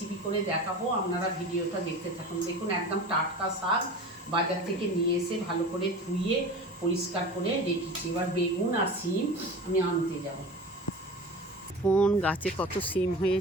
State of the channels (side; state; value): both; normal; correlation 0.34